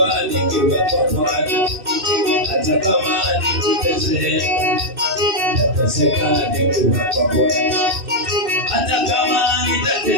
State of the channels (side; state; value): left; late; 2.6 ms